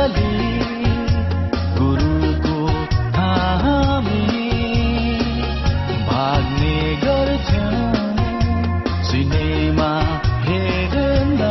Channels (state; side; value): identical; both; correlation 1.00